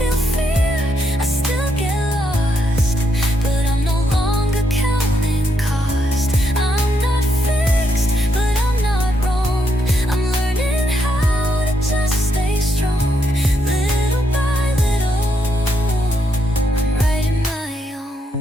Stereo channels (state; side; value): normal; both; correlation 0.78